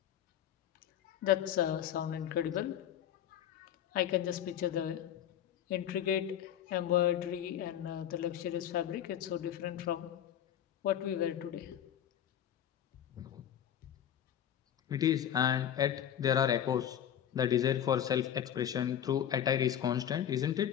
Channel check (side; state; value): right; quieter; 10.1 dB